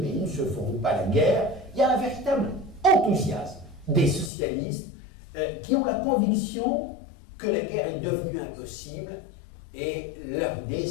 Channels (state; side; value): drops out; right; at 4.3 s